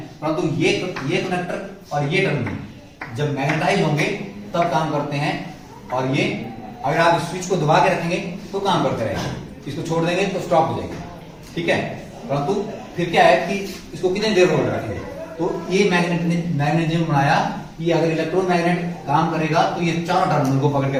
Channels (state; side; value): identical; both; correlation 1.00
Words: परंतु ये कनेक्टर और ये टर्मिनल जब मैग्नेटाइज होंगे तब काम करते हैं, और ये अगर आप स्विच को दबा के रखेंगे तो काम करते रहेंगे, इसको छोड़ देंगे तो स्टॉप हो जाएगा, ठीक है। परंतु फिर क्या है कि इसको कितनी देर होल्ड रखेंगे, तो ये मैग्नेटिज्म बनाया कि अगर इलेक्ट्रोमैग्नेट काम करेगा तो ये चारों टर्मिनल को पकड़ के